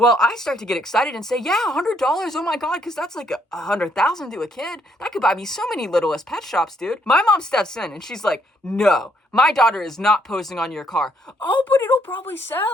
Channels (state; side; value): normal; both; correlation 0.71